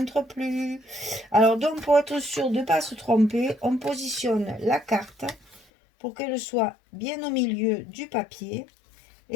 plus. Alors donc, pour être sûr de ne pas se tromper, on positionne la carte pour qu'elle soit bien au milieu du papier.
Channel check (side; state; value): right; drops out; at 5.6 s